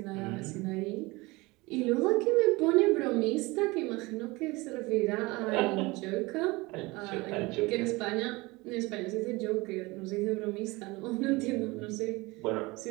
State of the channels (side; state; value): left; quieter; 23.0 dB